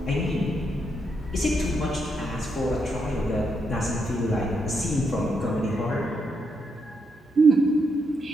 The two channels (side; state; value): both; normal; correlation 0.80